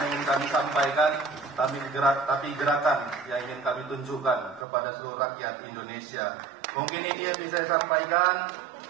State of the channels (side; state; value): left; drops out; at 4.7 s